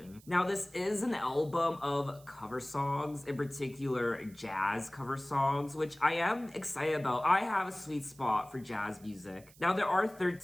Now, this is an album of cover songs, in particular jazz cover songs, which I am excited about. I have a sweet spot for jazz music. Now, there are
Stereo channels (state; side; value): noise; right; hiss, 25 dB below the sound